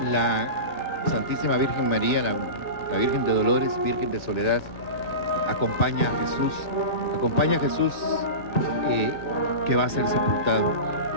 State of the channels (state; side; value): late; right; 2.4 ms